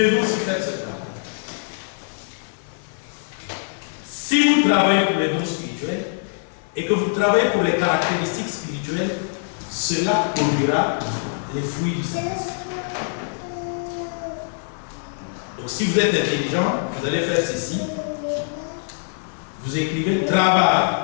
aussi faire ce travail. Si vous travaillez pour les dons spirituels et que vous travaillez pour les caractéristiques spirituelles, cela produira les fruits du Saint-Esprit. Donc si vous êtes intelligent, vous allez faire ceci. Vous écrivez travail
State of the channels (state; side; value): silent; right; 55 dB below the other